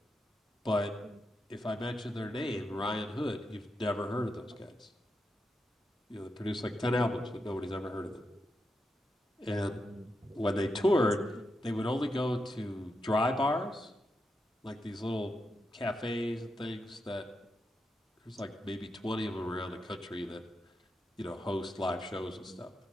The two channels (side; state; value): both; normal; correlation 0.85